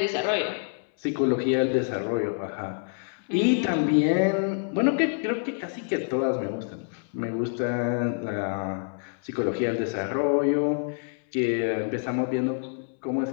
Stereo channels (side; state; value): right; silent; 60 dB below the other